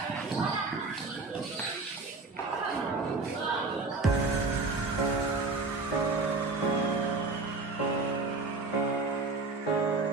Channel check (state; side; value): quieter; left; 3.8 dB